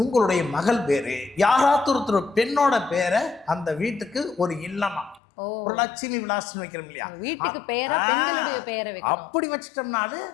உங்களுடைய மகள் வேறு, யாராவது ஒருத்தர் பெண்ணோட பேரை அந்த வீட்டுக்கு ஒரு இல்லமா ஒரு லட்சுமி விலாசம் வைக்கிறோம் இல்லையா, வீட்டுக்கு பேரா பெண்களுடைய பேரை வைக்கணும். அப்படி வச்சிட்டோம்னாலே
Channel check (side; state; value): right; drops out; at 5.2 s